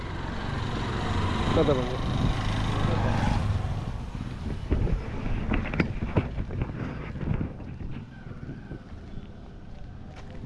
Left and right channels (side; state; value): both; identical; correlation 1.00